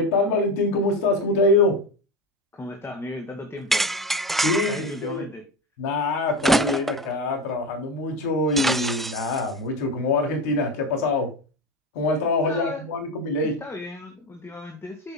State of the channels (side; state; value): both; normal; correlation 0.21